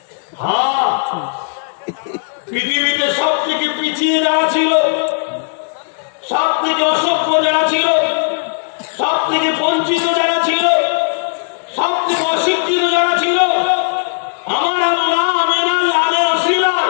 হ্যাঁ, পৃথিবীতে সব থেকে পিছিয়ে যারা ছিল, সব থেকে অসভ্য যারা ছিল, সব থেকে বঞ্চিত যারা ছিল, সব থেকে অশিক্ষিত যারা ছিল, আমার আল্লাহ আমিনার লালে ওসিলায়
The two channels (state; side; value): silent; right; digital silence